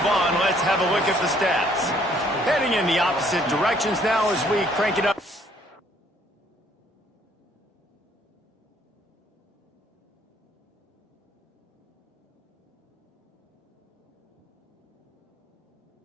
on, let's have a look at the stats. Heading in the opposite directions now as we crank it up.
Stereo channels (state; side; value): normal; both; correlation 0.63